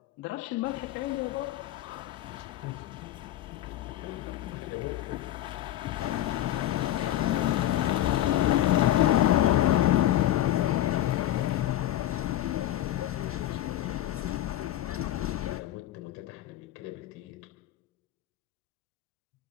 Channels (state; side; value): quieter; right; 13.3 dB